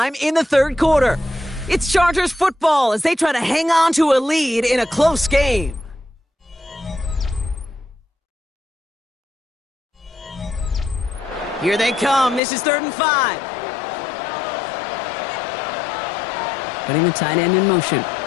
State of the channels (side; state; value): right; drops out; at 12.4 s